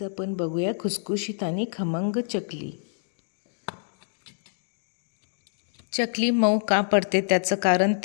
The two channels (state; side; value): silent; right; digital silence